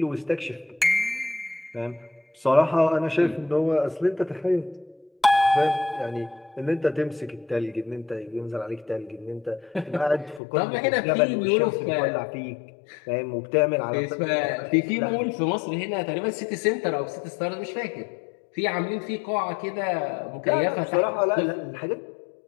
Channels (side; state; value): right; drops out; at 10.4 s